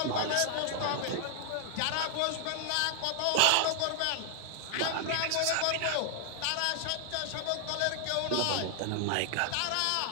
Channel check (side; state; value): both; different; correlation 0.00